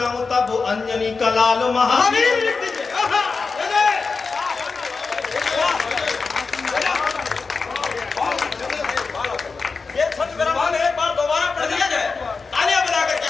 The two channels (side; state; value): right; quieter; 4.5 dB